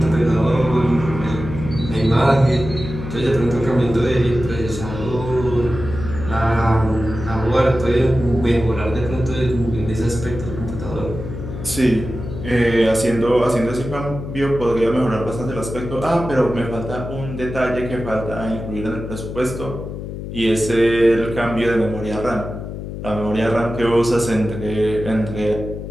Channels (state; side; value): noise; left; hum, 8 dB below the sound